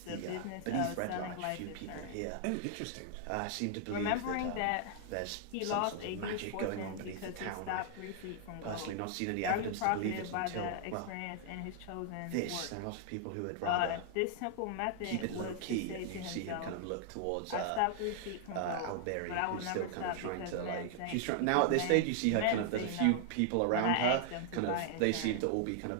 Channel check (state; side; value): different; both; correlation 0.00